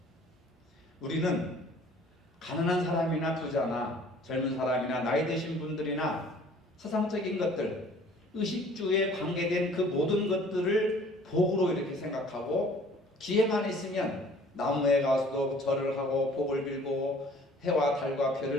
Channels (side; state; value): both; normal; correlation 0.53